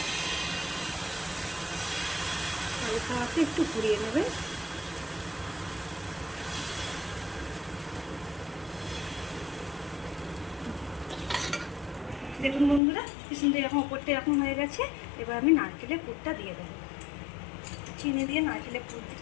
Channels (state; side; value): drops out; right; at 12.8 s